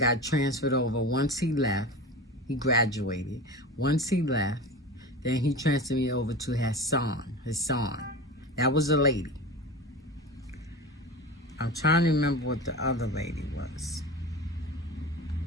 transferred over. Once he left, he graduated. Once he left, then he transferred me over to Hassan. That was a lady. I'm trying to remember what the other lady was.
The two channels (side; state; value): both; normal; correlation 0.30